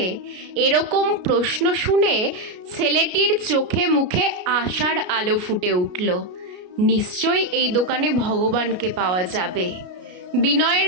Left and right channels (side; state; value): left; late; 33 ms